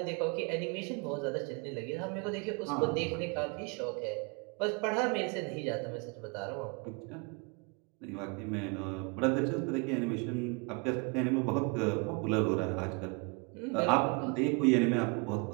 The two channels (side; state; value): left; quieter; 32.7 dB